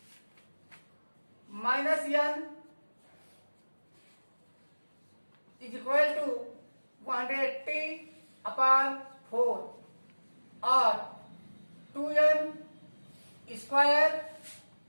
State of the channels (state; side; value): inverted; both; correlation -1.00